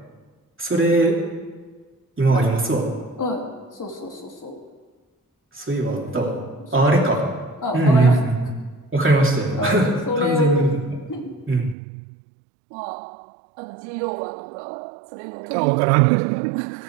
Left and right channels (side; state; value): left; drops out; at 11.8 s